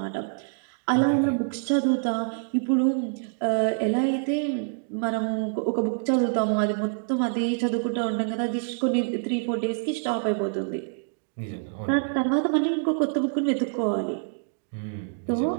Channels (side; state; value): left; silent; digital silence